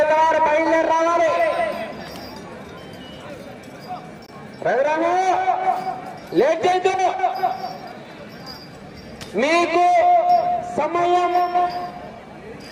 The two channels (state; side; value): identical; both; correlation 1.00